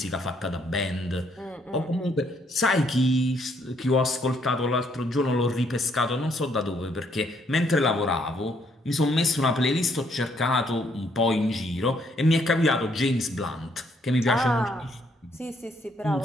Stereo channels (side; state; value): both; normal; correlation 0.70